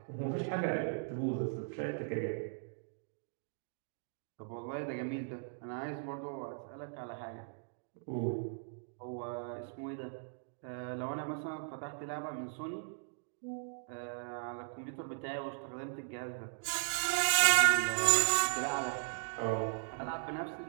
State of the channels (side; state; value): left; silent; digital silence